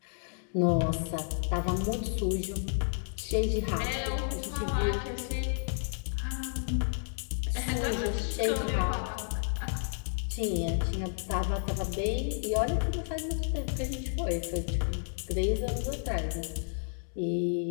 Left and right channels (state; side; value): silent; right; digital silence